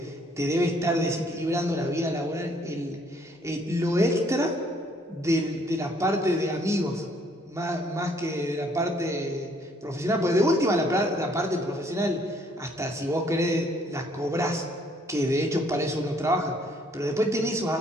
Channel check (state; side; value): normal; both; correlation 0.65